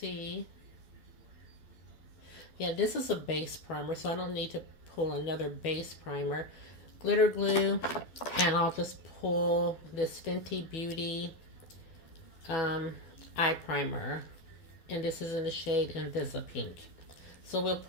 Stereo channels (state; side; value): late; right; 12 ms